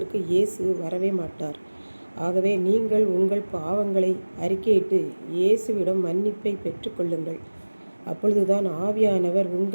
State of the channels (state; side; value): inverted; both; correlation -1.00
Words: இயேசு வரவே மாட்டார். ஆகவே நீங்கள் உங்கள் பாவங்களை அறிக்கையிட்டு இயேசுவிடம் மன்னிப்பை பெற்றுக்கொள்ளுங்கள். அப்பொழுதுதான் ஆவியானவர்